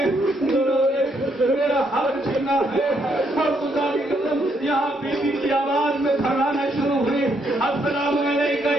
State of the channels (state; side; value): normal; both; correlation 0.74